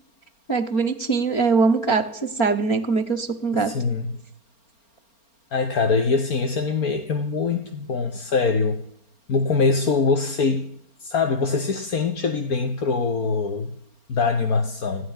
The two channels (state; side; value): late; right; 4.4 ms